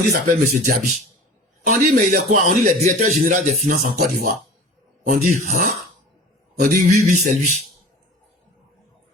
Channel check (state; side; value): normal; both; correlation 0.40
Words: il s'appelle M. Diaby. On dit, mais il est quoi? On dit, le directeur général des finances en Côte d'Ivoire. On dit, hein? On dit, oui, c'est lui.